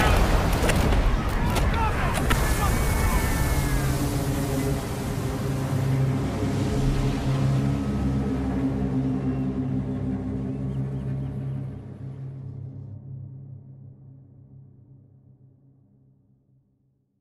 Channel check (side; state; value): both; identical; correlation 1.00